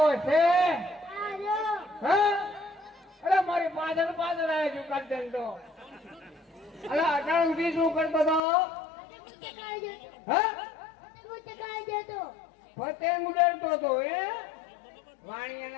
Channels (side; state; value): right; drops out; at 8.4 s